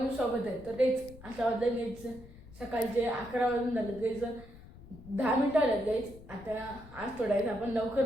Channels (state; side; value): noise; left; rumble, 19 dB below the sound